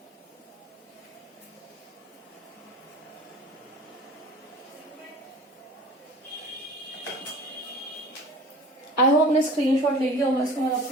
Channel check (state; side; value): normal; both; correlation 0.42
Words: आई होप आपने स्क्रीनशॉट ले लिया होगा, इसको मैं अब